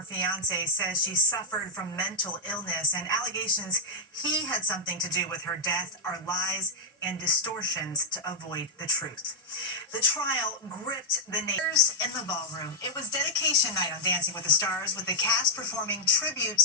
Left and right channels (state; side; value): normal; both; correlation -0.06